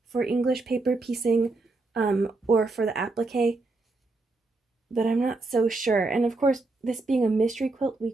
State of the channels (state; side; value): quieter; left; 3.4 dB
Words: for English paper piecing or for the applique, but I'm not so sure. And of course, this being a mystery quilt, we